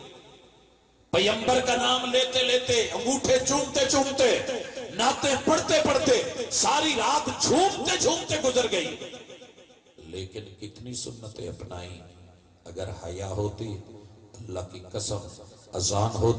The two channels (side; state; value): both; identical; correlation 1.00